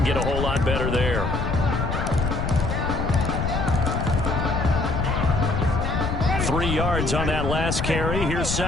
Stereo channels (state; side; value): noise; left; rumble, 1 dB below the sound